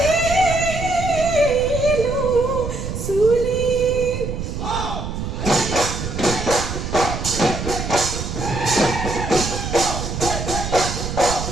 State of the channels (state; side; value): noise; right; rumble, 5 dB below the sound